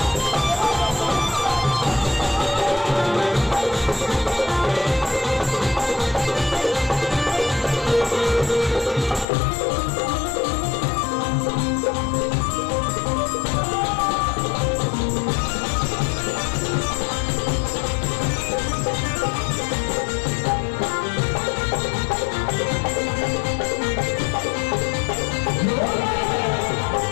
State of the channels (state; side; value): drops out; right; at 9.2 s